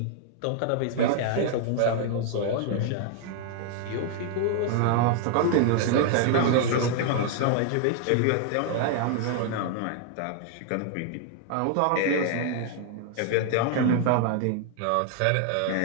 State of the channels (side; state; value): both; different; correlation 0.00